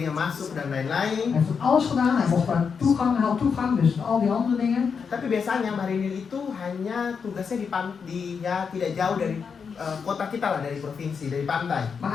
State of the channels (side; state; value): right; quieter; 6.0 dB